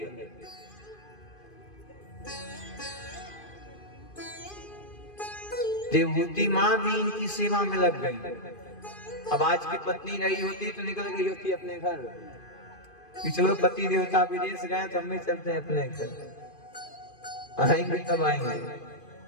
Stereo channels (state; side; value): late; right; 2.5 ms